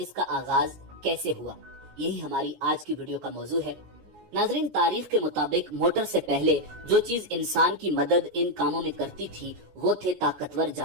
आगाज कैसे हुआ, यही हमारी आज की वीडियो का मौजू है। नाज़रीन, तारीख के मुताबिक मोटर से पहले जो चीज इंसान की मदद इन कामों में करती थी वो थे ताकतवर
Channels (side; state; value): left; late; 17 ms